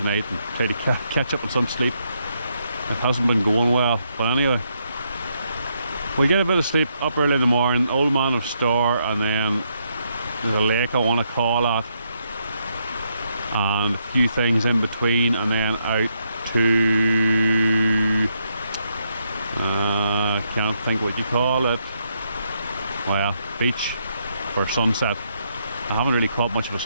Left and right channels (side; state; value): both; inverted; correlation -0.77